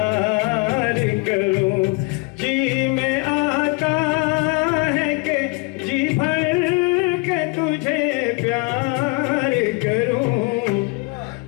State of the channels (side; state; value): right; quieter; 27.6 dB